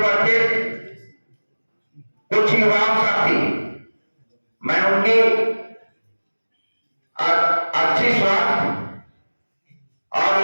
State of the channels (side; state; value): both; inverted; correlation -1.00